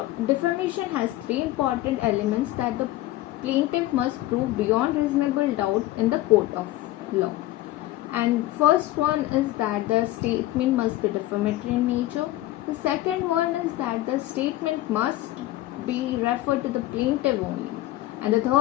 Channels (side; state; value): right; quieter; 16.1 dB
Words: defamation has three important elements that the plaintiff must prove beyond reasonable doubt in the court of law. And first one is that the statement must be defamatory in nature. The second one is that the statement must be referred to the plaintiff only. And the